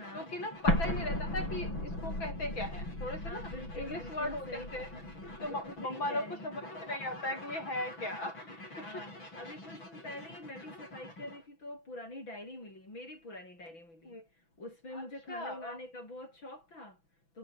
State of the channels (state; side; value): late; right; 6.0 ms